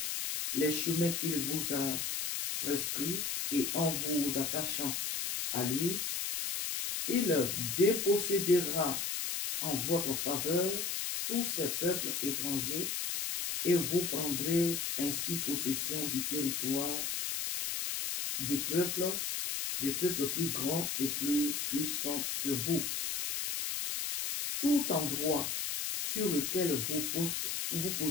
les chemins qu'il vous a prescrits et en vous attachant à lui, il dépossédera en votre faveur tous ces peuples étrangers et vous prendrez ainsi possession du territoire de peuples plus grands et plus puissants que vous. Tout endroit sur lequel vous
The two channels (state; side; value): noise; left; hiss, 1 dB below the sound